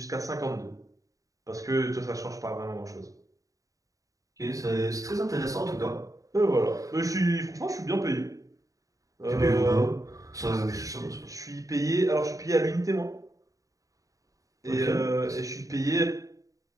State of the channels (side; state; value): left; late; 0.16 ms